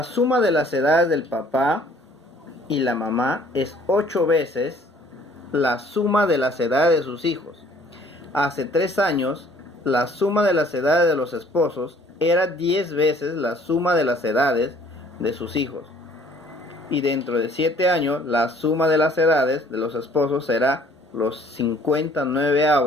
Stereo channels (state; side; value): normal; both; correlation 0.56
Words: suma de las edades del papá y la mamá es 8 veces la suma de las edades de sus hijos. Hace 3 años, la suma de las edades de los esposos era 10 veces la suma de las edades de sus hijos. Y dentro de 7 años, la suma de las edades de los esposos será los